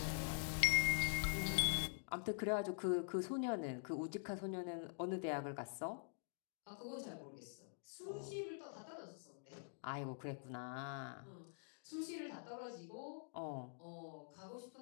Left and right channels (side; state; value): right; silent; digital silence